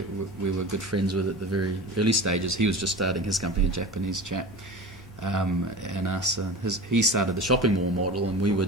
were good friends with at the very early stages, he was just starting his company, a Japanese chap. And us, he started the shopping mall model, and we were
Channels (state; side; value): normal; both; correlation 0.33